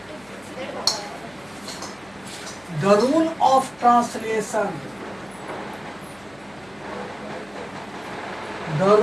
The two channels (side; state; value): left; noise; hum, 26 dB below the sound